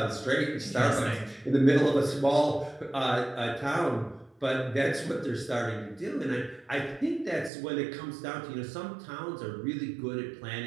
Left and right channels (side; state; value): left; drops out; at 7.5 s